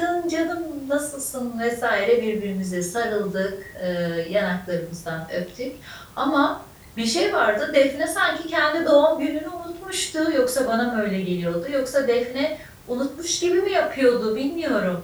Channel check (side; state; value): both; identical; correlation 1.00